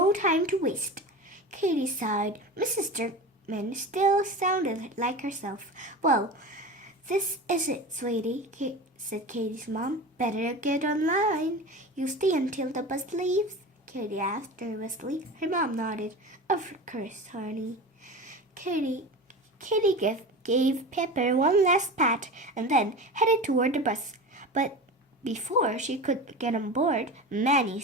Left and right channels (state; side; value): normal; both; correlation 0.31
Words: time to waste. Katie sighed. Mrs. Jerkman still sounded like herself. Well, this is it, sweetie, said Katie's mom. Better get online. You stay until the bus leaves? Katie asked nervously. Her mom nodded. Of course, honey. Katie gave Pepper one last pat and then headed toward the bus. But before she could get on board, Manny